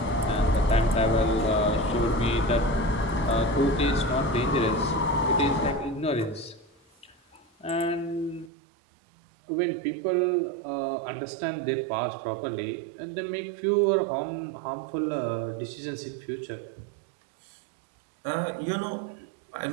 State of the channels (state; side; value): drops out; left; at 8.5 s